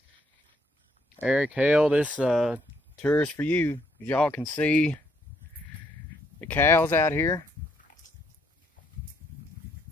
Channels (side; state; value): both; normal; correlation 0.71